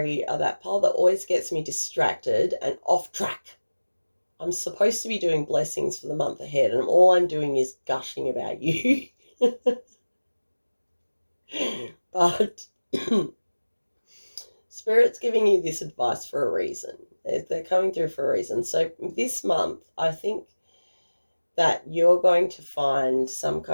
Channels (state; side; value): inverted; both; correlation -1.00